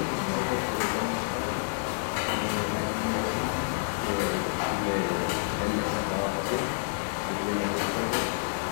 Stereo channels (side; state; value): right; silent; digital silence